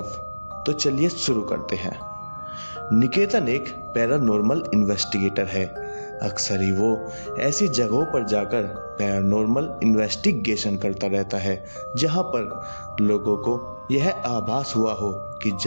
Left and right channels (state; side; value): inverted; both; correlation -1.00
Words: तो चलिए शुरू करते हैं। निकेतन एक पैरानॉर्मल इन्वेस्टिगेटर है। अक्सर ही वो ऐसी जगहों पर जाकर पैरानॉर्मल इन्वेस्टिगेशन करता रहता है जहां पर लोगों को यह आभास हुआ हो कि